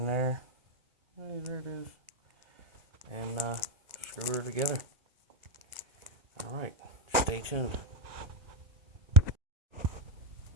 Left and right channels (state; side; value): late; left; 1.3 ms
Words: there. Hey, there it is. And screw her together. Alright, stay tuned.